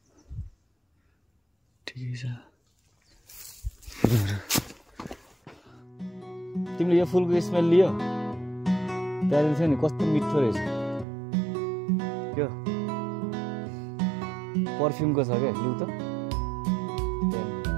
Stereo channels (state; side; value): drops out; left; at 11.1 s